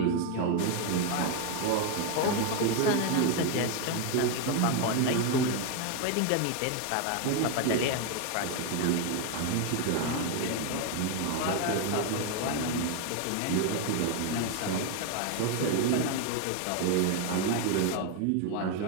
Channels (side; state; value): both; different; correlation 0.01